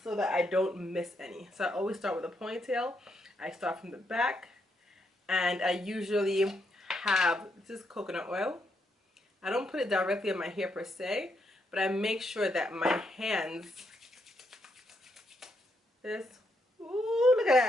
so that I don't miss any. So I always start with a ponytail. I start from the back, and I usually have, this is coconut oil. I don't put it directly on my hair per se, but I make sure that my hands, ooh, look at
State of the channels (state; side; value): normal; both; correlation 0.78